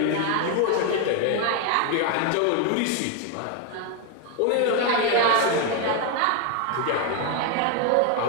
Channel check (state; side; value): different; both; correlation 0.01